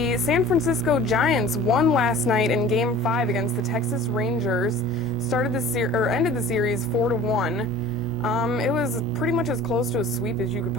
San Francisco Giants won last night in Game 5 against the Texas Rangers. Ended the series 4-1. It was pretty much as close to a sweep as you could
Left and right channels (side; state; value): both; normal; correlation 0.43